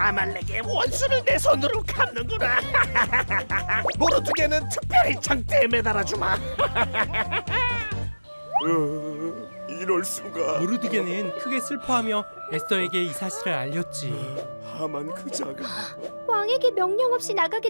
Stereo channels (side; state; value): both; inverted; correlation -1.00